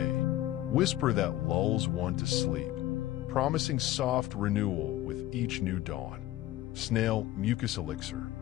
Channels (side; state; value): right; quieter; 15.0 dB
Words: whisper that lulls one to sleep, promising soft renewal with each new dawn. Snail mucus elixir.